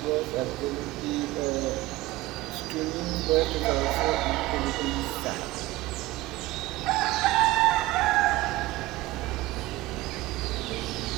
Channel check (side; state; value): left; quieter; 18.7 dB